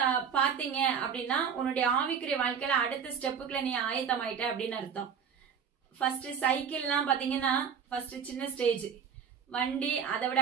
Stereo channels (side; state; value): left; quieter; 7.3 dB